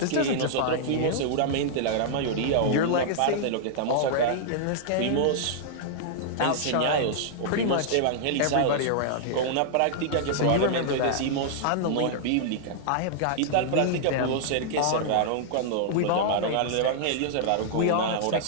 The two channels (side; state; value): both; different; correlation -0.01